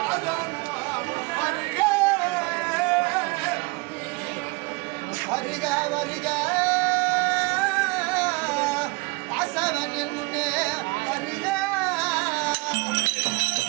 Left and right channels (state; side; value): quieter; left; 26.5 dB